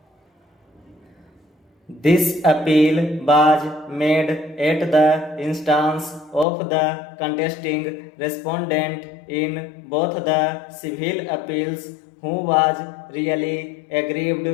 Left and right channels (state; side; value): drops out; right; at 6.5 s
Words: This appeal was made at the instance of the contesting respondent in both the civil appeals, who was really aggrieved